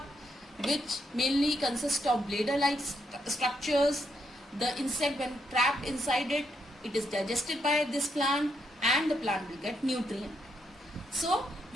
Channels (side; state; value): both; normal; correlation 0.78